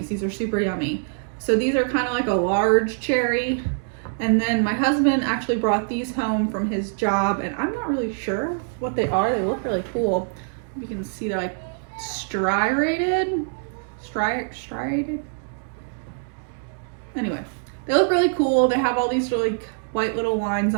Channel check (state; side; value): silent; left; digital silence